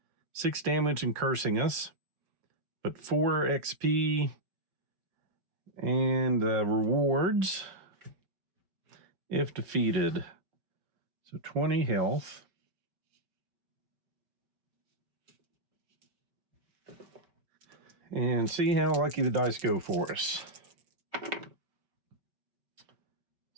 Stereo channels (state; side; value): late; left; 5.2 ms